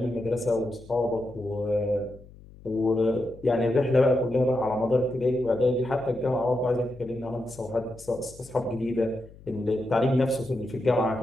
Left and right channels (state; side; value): noise; left; hum, 21 dB below the sound